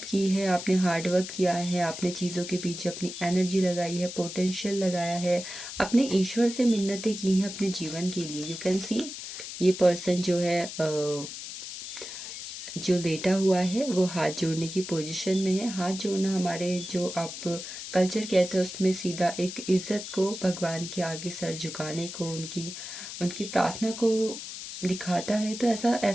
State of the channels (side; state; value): left; noise; hiss, 9 dB below the sound